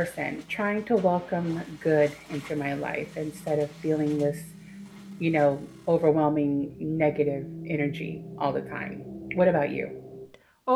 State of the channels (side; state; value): both; identical; correlation 1.00